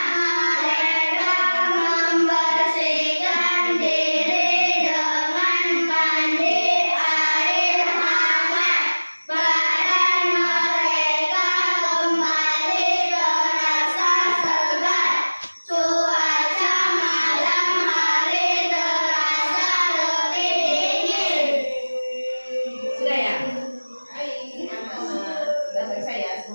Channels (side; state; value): both; inverted; correlation -1.00